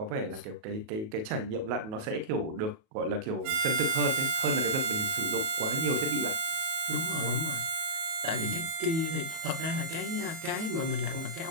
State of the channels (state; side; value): late; left; 37 ms